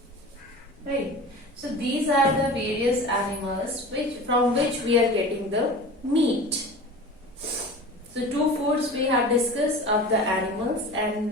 right? So these are the various animals from which we are getting the meat. So two foods we have discussed of the animals,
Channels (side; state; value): both; normal; correlation 0.36